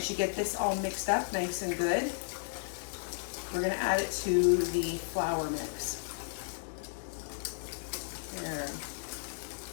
you get this all mixed up nice and good, we're going to add it to the flour mix. There.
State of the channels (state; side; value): silent; right; digital silence